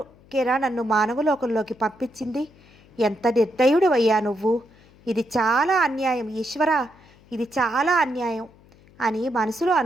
నన్ను మానవలోకంలోకి పంపించింది? ఎంత నిర్దయుడివయ్యా నువ్వు! ఇది చాలా అన్యాయం ఈశ్వరా, ఇది చాలా అన్యాయం అని మనసులో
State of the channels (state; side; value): noise; left; hum, 27 dB below the sound